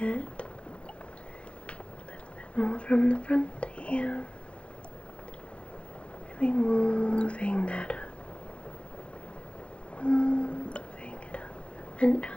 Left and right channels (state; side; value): late; right; 0.059 ms